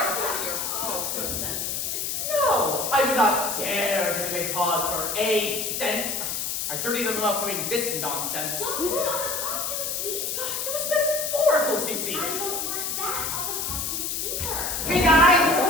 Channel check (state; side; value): noise; left; hiss, 2 dB below the sound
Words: dirty your paws for a cent. No, I would not dare to make pause for a cent. I dirty them up doing this nonsense. Don't put it on the costumes, please. It was metaphorical, CC. I don't want that on the costumes either. Hey guys!